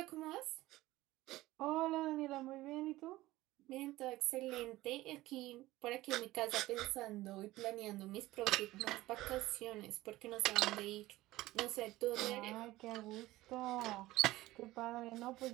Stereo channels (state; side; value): quieter; left; 17.5 dB